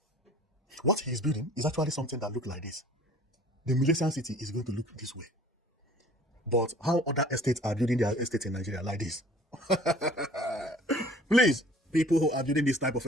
What he is building is actually something that looks like this. The Millennium City is going to look this way. But how other estates are building their estate in Nigeria like this? Please, people who are building this type of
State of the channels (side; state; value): both; normal; correlation 0.51